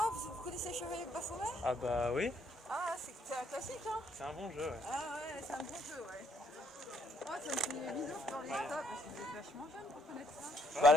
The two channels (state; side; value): normal; both; correlation 0.70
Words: vous connaissez Chevalier de Baphomet? Ah bah oui, Ah, c'est un classique, hein? c'est un bon jeu, ouais. Ah ouais, c'est un bon jeu, ouais. Ouais, ça me fait bizarre dans les stocks parce que vous êtes vachement jeune pour connaître ça. Bah